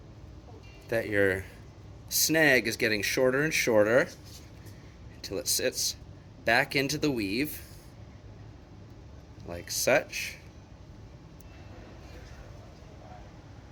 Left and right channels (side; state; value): both; identical; correlation 1.00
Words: that your snag is getting shorter and shorter until it sits back into the weave like such.